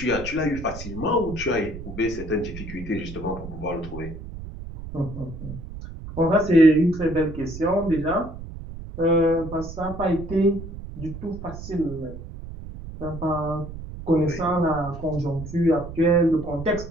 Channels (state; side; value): noise; right; rumble, 11 dB below the sound